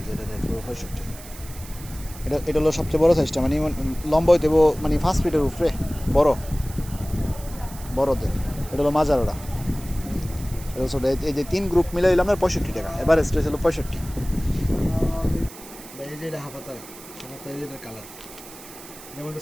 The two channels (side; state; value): right; noise; hiss, 17 dB below the sound